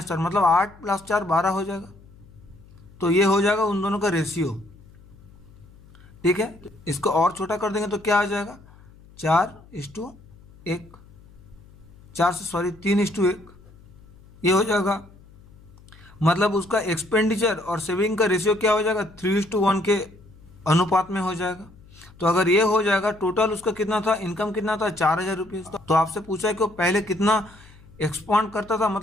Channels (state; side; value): noise; left; hum, 24 dB below the sound